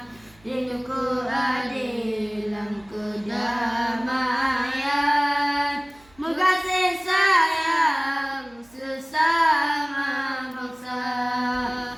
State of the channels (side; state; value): right; noise; hum, 29 dB below the sound